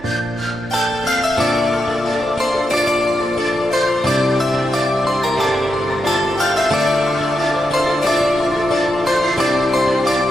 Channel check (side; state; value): right; noise; hum, 21 dB below the sound